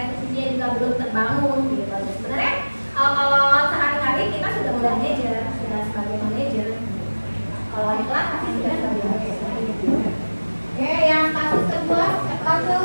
eksekusinya juga belum terbangun gitu. Sebenarnya kalau sehari-hari kita sudah manajer, sudah sebagai manajer. Kalau di kelas pasti sudah sebagai manajer. Oke, yang kasus kedua,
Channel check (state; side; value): inverted; both; correlation -1.00